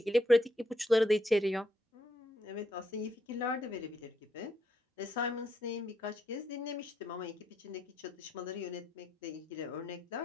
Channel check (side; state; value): both; normal; correlation 0.77